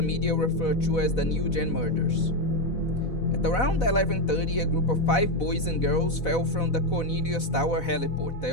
media referred to as the New Gen murders. At around 11:30, a group of 5 boys and girls fell from the Cornelius Tower heliport. They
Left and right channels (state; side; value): late; right; 4.0 ms